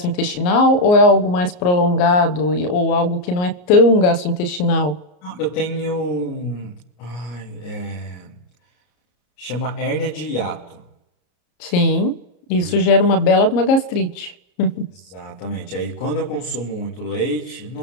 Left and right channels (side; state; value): right; late; 34 ms